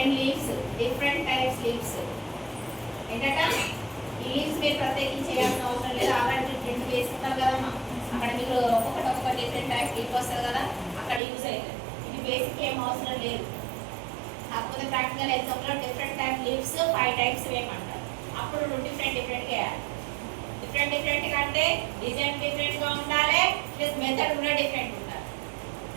లీవ్స్, డిఫరెంట్ టైప్స్ లీవ్స్. ఏంటట? ఈ లీవ్స్ మీరు ప్రత్యేకించి చేయాల్సిన అవసరం లేదు. ఆల్రెడీ ప్రింట్ వేసుకుంటారు కదమ్మా, అక్కడ మీరు ఒక్కొక్క డిఫరెంట్ టైప్ లీవ్ వస్తుంది కదా, అక్కడ యూజ్ అవుతుంది. ఇది బేసిక్ ఏం అవసరం లేదు. కాకపోతే ప్రాక్టికల్ ఎగ్జామ్లో డిఫరెంట్ టైప్ లీవ్స్ 5 టైప్స్ వేయమంటారు. అప్పుడు డిఫరెంట్ వేయాలి. డిఫరెంట్ అంటే డిజైన్ డిఫరెంట్గా ఉండాలి, ప్లస్ మెథడ్ కూడా డిఫరెంట్ ఉండాలి.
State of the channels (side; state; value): left; drops out; at 11.2 s